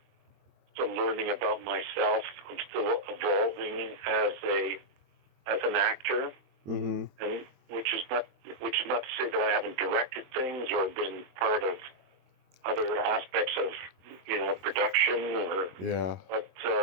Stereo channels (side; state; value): left; late; 22 ms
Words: still learning about myself. I'm still evolving as an actor, mm-hmm. and which is not to say that I haven't directed things or been part of other aspects of production, or yeah. But